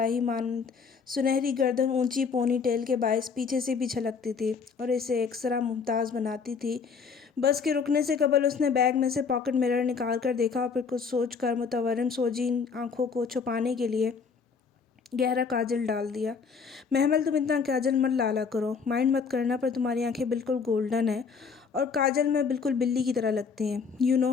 مانند سنہری گردن اونچی پونی ٹیل کے باعث پیچھے سے بھی چھلکتی تھی اور اسے ایکسرا ممتاز بناتی تھی۔ بس کے رکنے سے قبل اس نے بیگ میں سے پاکٹ مرر نکال کر دیکھا اور پھر کچھ سوچ کر متورم سوجی آنکھوں کو چھپانے کے لیے گہرا کاجل ڈال دیا۔ محمل تم اتنا کاجل مت لالا کرو، مائنڈ مت کرنا، پر تمہاری آنکھیں بالکل گولڈن ہیں اور کاجل میں بالکل بلی کی طرح لگتی ہیں، you know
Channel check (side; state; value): right; quieter; 5.6 dB